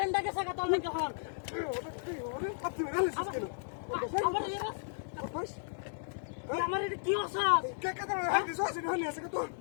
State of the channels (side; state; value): right; silent; digital silence